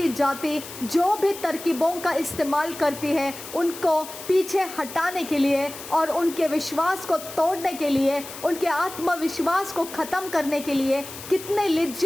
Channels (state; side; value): noise; left; hiss, 13 dB below the sound